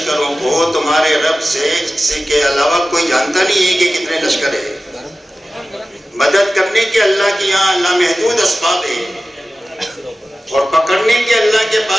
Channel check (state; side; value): normal; both; correlation 0.95